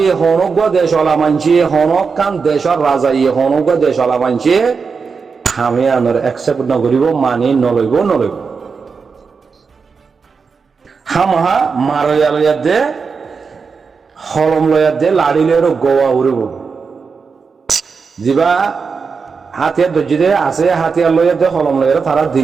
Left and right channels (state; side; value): quieter; left; 5.3 dB